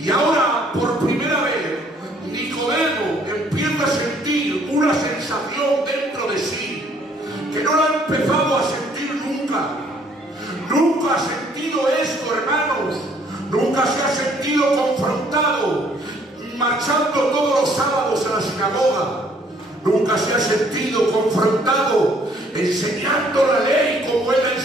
ahora, por primera vez, Nicodemo empieza a sentir una sensación dentro de sí que no la ha empezado a sentir nunca. Nunca ha sentido esto, hermanos. Nunca se ha sentido confrontado marchando todos los sábados a la sinagoga. Nunca se ha sentido confrontado enseñando la ley como él la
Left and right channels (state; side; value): normal; both; correlation 0.62